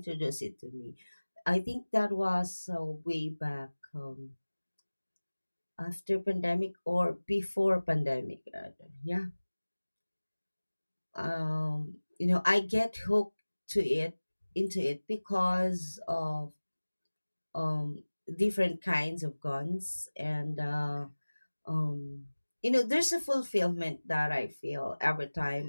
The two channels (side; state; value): both; inverted; correlation -1.00